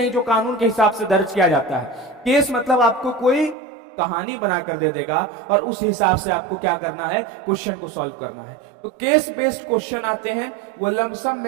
जो कानून के हिसाब से दर्ज किया जाता है। केस मतलब आपको कोई कहानी बनाकर दे देगा और उस हिसाब से आपको क्या करना है? क्वेश्चन को सॉल्व करना है। तो केस बेस्ड क्वेश्चन आते हैं, वो लमसम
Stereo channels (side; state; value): left; drops out; at 3.6 s